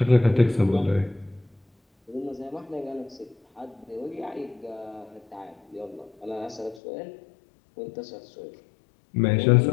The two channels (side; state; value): right; drops out; at 6.8 s